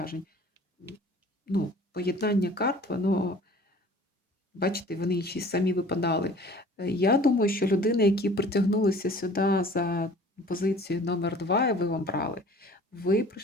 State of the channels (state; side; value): normal; both; correlation 0.48